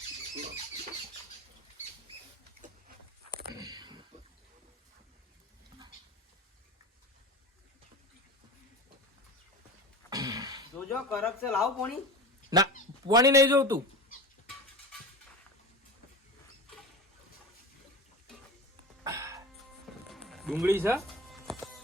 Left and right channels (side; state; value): both; normal; correlation 0.31